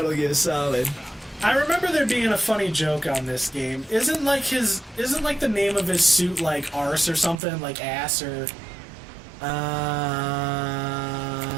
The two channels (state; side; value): drops out; left; at 7.4 s